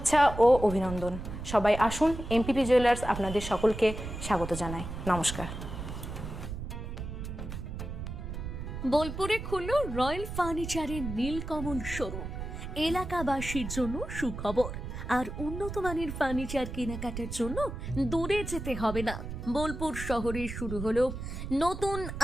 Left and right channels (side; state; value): right; noise; rumble, 7 dB below the sound